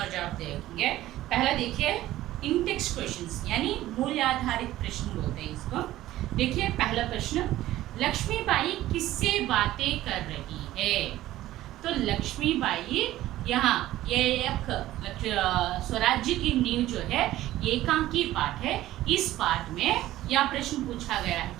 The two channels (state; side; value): quieter; left; 15.0 dB